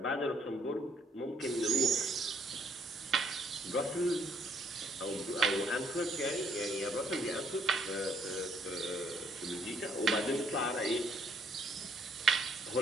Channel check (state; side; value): normal; both; correlation 0.67